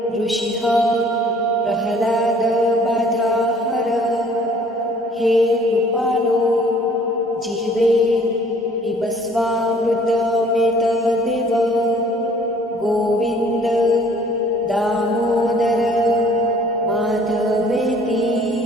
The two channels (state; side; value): normal; both; correlation 0.55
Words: ऋषिः प्रह्लाद बाधाहर हे कृपालो जिह्वे पिबस्वामृतमेतदेव गोविंद दामोदर माधवेति